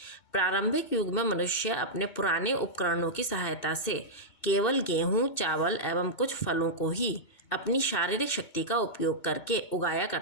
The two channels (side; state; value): right; late; 2.2 ms